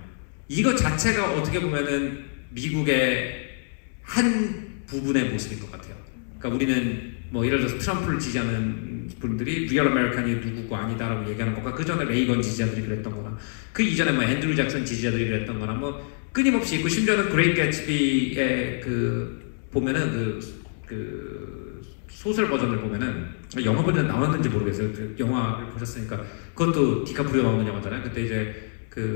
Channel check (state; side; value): silent; right; 61 dB below the other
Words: 이거 자체가 어떻게 보면은 미국의 한 부분의 모습인 것 같아요. 그러니까 우리는 뭐 예를 들어서 트럼프를 지지하는 분들이 리얼 아메리칸이 누구고 아니다라고 얘기하는 것과 그 전에 레이건 지지자들이 그랬던 거나 그 이전에 뭐 앤드류 잭슨 지지자들이 그랬던 거나 뭐 끊임없이 있고 심지어는 그레이트 개츠비의 그 보면은 그 소설 버전을 보면은 영화 버전 나왔는지 모르겠어요. 그 영화를 보셨으니까 그것도 디카프리오 나오는 영화잖아요. 그때 이제